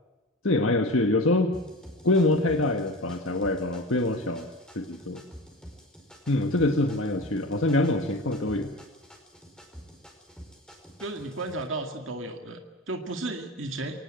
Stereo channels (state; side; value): normal; both; correlation 0.30